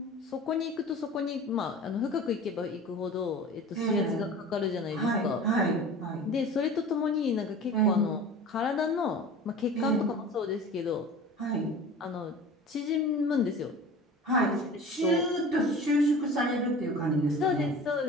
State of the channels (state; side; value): normal; both; correlation 0.39